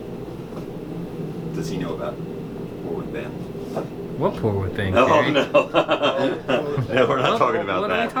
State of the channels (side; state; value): both; identical; correlation 1.00